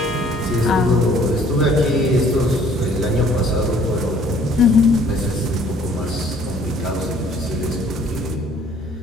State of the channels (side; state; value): both; normal; correlation 0.58